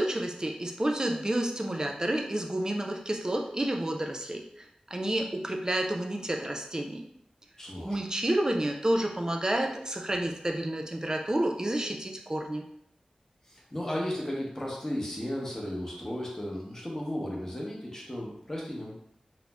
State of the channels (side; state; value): both; normal; correlation 0.94